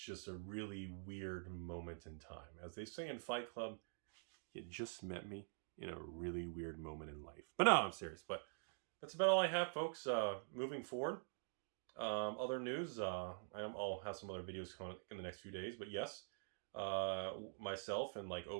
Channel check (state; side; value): silent; left; digital silence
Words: a really weird moment in time. As they say in Fight Club, you just met me in a really weird moment in life. But no, I'm serious. But that's about all I have, folks. Moving forward, other news, I'll have some other videos coming in the next few days. But yes, myself and like